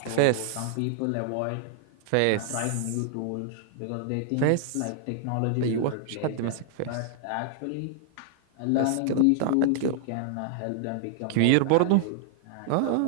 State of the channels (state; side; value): different; both; correlation 0.00